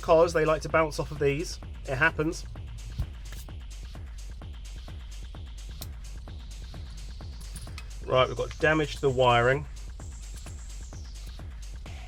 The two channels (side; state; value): both; identical; correlation 1.00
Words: they like to bounce off of these. It happens. Right, we've got damage to the wiring.